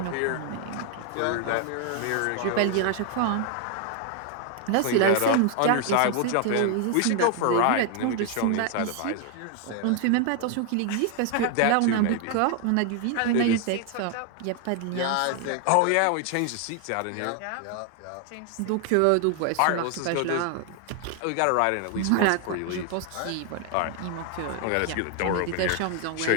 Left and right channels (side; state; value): both; different; correlation 0.00